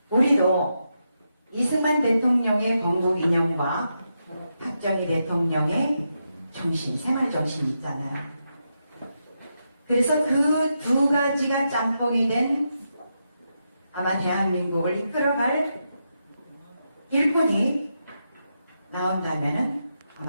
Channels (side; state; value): both; inverted; correlation -0.85